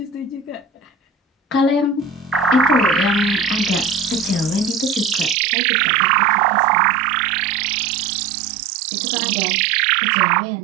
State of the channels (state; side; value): drops out; left; at 5.4 s